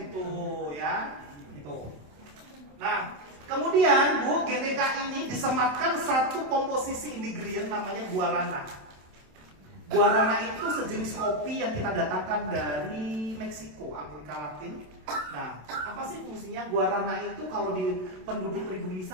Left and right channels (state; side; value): late; left; 27 ms